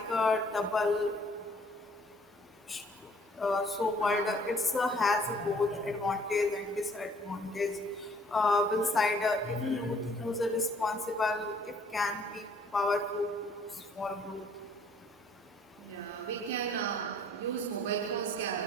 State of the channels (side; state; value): both; normal; correlation 0.59